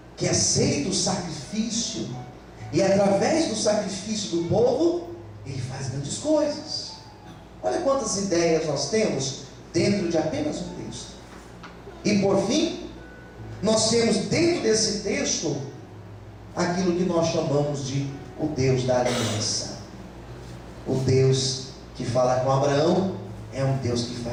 que aceita o sacrifício, e através do sacrifício do povo ele faz grandes coisas. Olha quantas ideias nós temos dentro de apenas um texto. E por fim, nós temos dentro desse texto aquilo que nós chamamos de o Deus da aliança. O Deus que fala com Abraão é um Deus que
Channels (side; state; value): both; identical; correlation 1.00